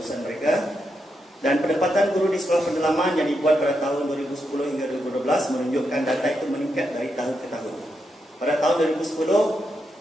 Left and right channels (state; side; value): normal; both; correlation 0.83